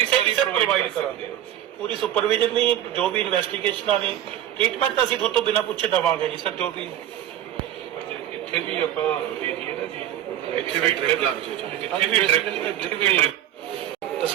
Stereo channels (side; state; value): left; quieter; 11.6 dB